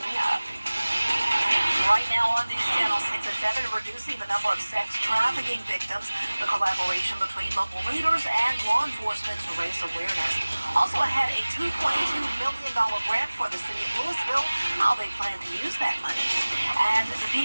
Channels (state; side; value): inverted; both; correlation -1.00